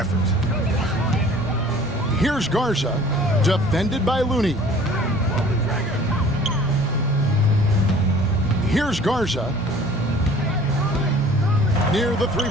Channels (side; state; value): right; noise; hum, 23 dB below the sound